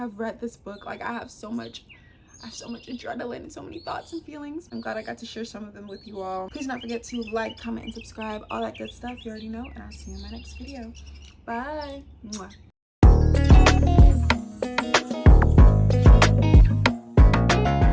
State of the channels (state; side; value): identical; both; correlation 1.00